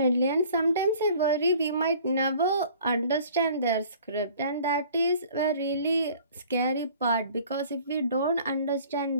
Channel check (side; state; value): both; inverted; correlation -0.51